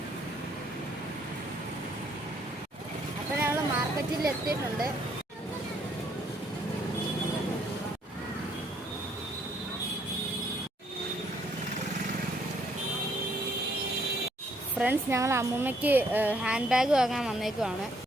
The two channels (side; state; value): both; normal; correlation 0.68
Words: അപ്പോൾ ഞങ്ങൾ മാർക്കറ്റിൽ എത്തിയിട്ടുണ്ട്. ഫ്രണ്ട്സ്, ഞങ്ങൾ അമ്മൂമ്മയ്ക്ക് ഹാൻഡ് ബാഗ് വാങ്ങാൻ വന്നേക്കുവാണ്.